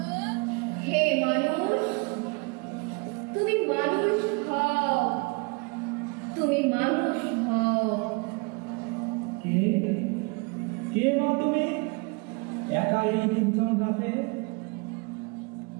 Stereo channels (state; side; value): quieter; left; 30.3 dB